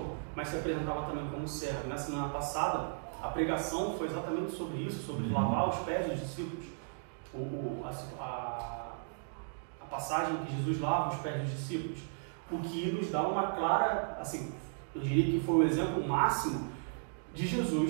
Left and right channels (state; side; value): silent; left; digital silence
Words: mas se apresentava também como servo. Na semana passada, a pregação foi exatamente sobre isso, sobre lavar os pés dos discípulos. A passagem que Jesus lava os pés dos discípulos, o que nos dá uma clara, assim, eu diria que foi o exemplo máximo de